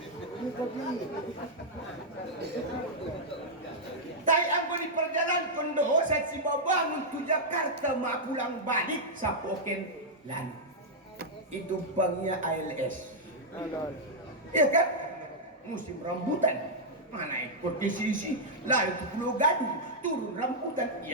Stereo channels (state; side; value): normal; both; correlation -0.05